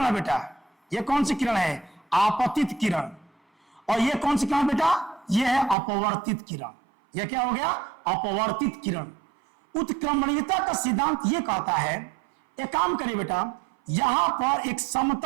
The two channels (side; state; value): left; drops out; at 5.8 s